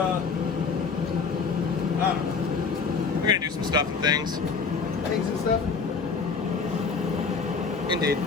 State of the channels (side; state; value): right; quieter; 5.2 dB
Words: don't know. We're gonna do some stuff and things. Things and stuff. Indeed.